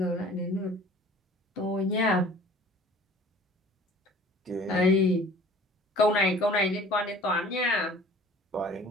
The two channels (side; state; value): both; normal; correlation 0.48